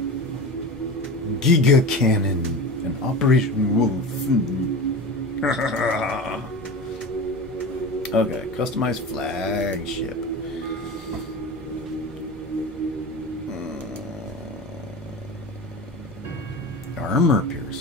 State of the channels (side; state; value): both; normal; correlation 0.29